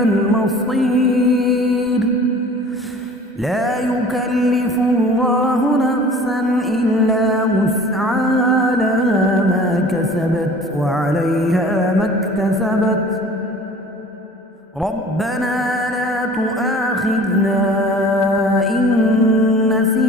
المصير لا يكلف الله نفسا إلا وسعها لها ما كسبت وعليها ما اكتسبت ربنا لا تؤاخذنا إن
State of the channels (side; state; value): both; normal; correlation 0.45